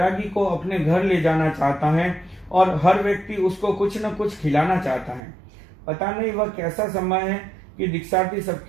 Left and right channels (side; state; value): left; drops out; at 5.2 s